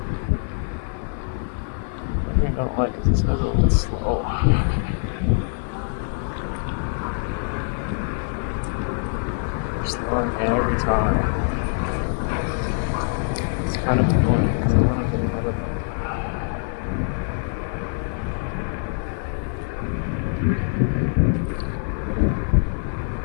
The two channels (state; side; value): silent; right; 56 dB below the other